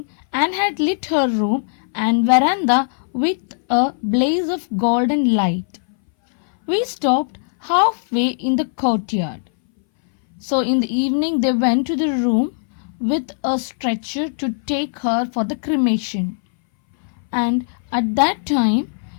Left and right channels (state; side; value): silent; right; 62 dB below the other